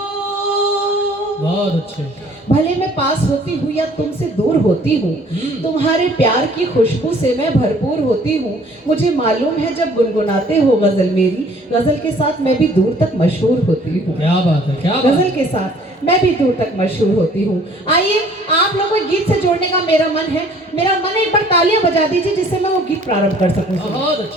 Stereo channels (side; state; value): both; normal; correlation 0.56